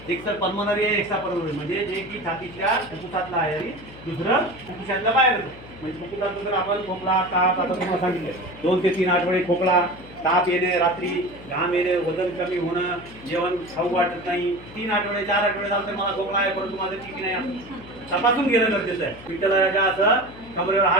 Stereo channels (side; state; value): left; noise; hum, 18 dB below the sound